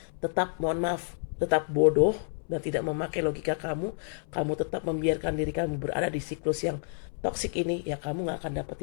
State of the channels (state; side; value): silent; right; 58 dB below the other